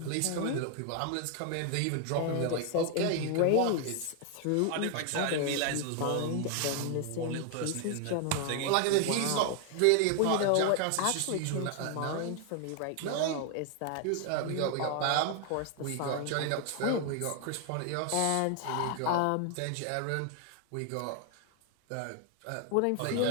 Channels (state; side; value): different; both; correlation 0.00